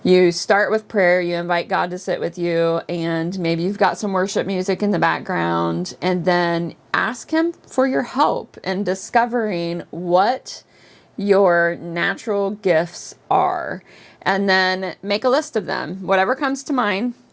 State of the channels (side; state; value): both; identical; correlation 1.00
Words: you start with prayer, you invite God to sit with you, and maybe you've got some worship music in the background, and then ask Him for your help in discovering what your natural gifts are. And then make a list of them. Whatever comes to mind,